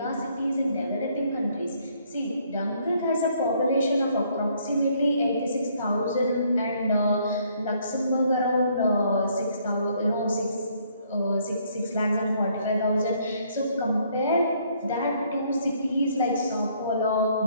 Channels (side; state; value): both; inverted; correlation -0.66